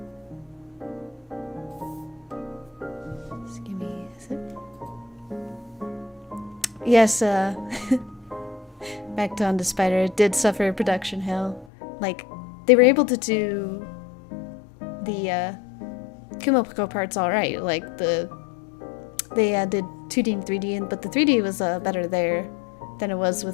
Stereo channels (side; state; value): right; drops out; at 11.7 s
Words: Just give me a sec. Yes, back to On to Spider, it did suffer production hell. Like, they were able to do the Kumoko parts alright. Like, they did 2D and 3D, but the 3D was better there than it was